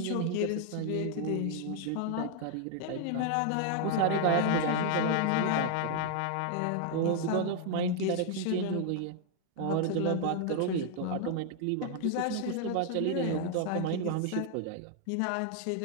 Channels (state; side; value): different; both; correlation 0.00